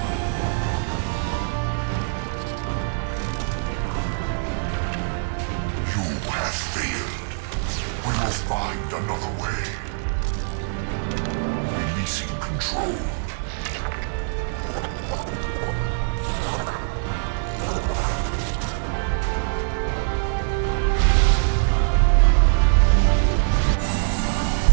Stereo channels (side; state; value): left; silent; digital silence